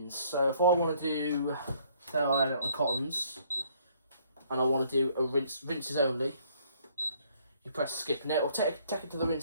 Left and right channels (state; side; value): inverted; both; correlation -0.63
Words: So if I want to do, say I had it on cottons, and I want to do a rinses only, you press skip. Now it'll take it to the